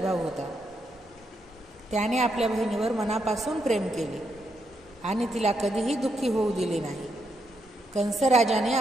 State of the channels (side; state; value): both; normal; correlation 0.80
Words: भाऊ होता. त्याने आपल्या बहिणीवर मनापासून प्रेम केले आणि तिला कधीही दुःखी होऊ दिले नाही. कंस राजाने